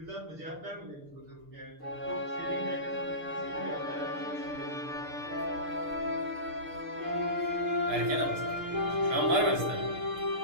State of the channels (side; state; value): left; late; 6.6 ms